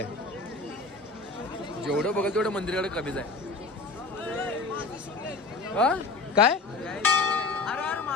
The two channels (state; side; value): quieter; right; 3.6 dB